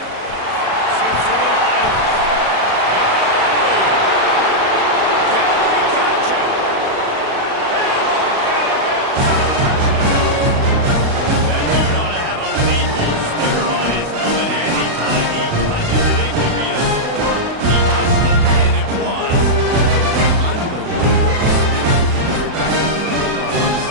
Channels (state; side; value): late; left; 36 ms